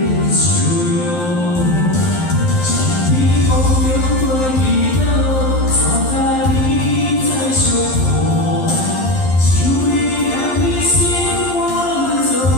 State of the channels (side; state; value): right; late; 11 ms